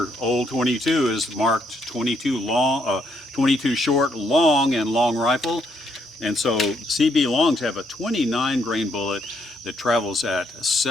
old 22 is marked 22 long, 22 short, long, and long rifle. And so CB longs have a 29 grain bullet that travels at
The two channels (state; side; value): normal; both; correlation 0.73